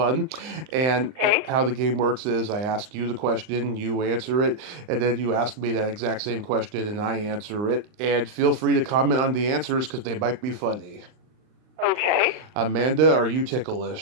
And how the game works is I ask you the question, you answer it, and then you ask me that exact same question, and I answer it, and feel free to comment on the answers because they might be funny. Okay. Amanda, are you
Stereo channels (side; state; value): left; late; 39 ms